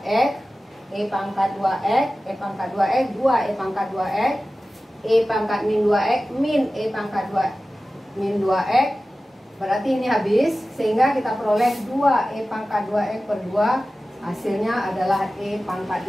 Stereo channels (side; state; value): both; normal; correlation 0.95